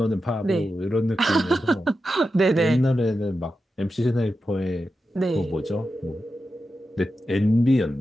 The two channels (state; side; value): normal; both; correlation 0.90